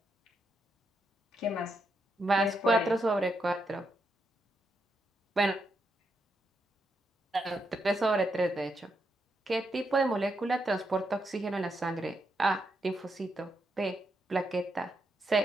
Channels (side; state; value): both; normal; correlation 0.81